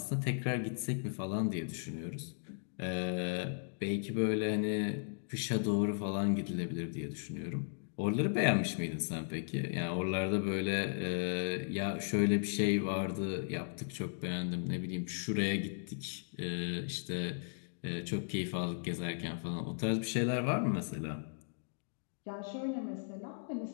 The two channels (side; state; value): right; silent; digital silence